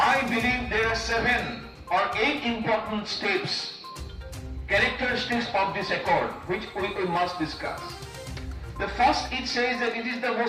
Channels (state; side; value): identical; both; correlation 1.00